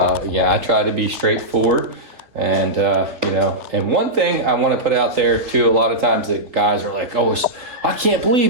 Yeah, I try to be straightforward. And, and one thing I want to put out there too, a lot of times that guys are like, oh, I can't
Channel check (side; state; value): left; late; 3.9 ms